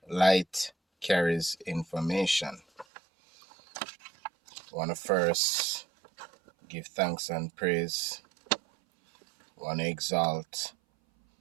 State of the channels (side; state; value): left; drops out; at 2.9 s